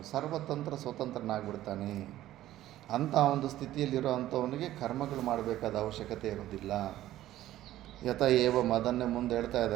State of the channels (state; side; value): quieter; left; 14.1 dB